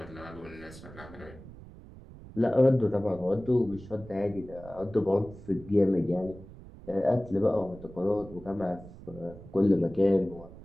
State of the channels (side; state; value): right; noise; rumble, 17 dB below the sound